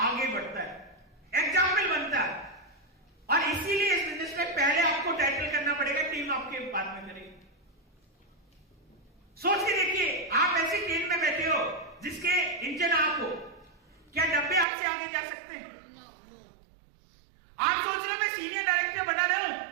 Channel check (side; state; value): left; drops out; at 14.7 s